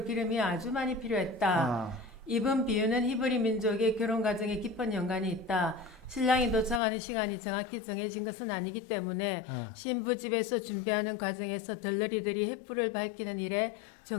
기름이 아주 많이 필요했다. 어, 이번 비유는 히브리 민족의 결혼 과정에 깊은 연관이 있다. 신랑이 도착하는 시간이 정확히 정해진 것은 아니기 때문에 신부 집에서 준비하는 과정에서 들러리들이 횃불을 밝히는 일에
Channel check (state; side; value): drops out; right; at 6.8 s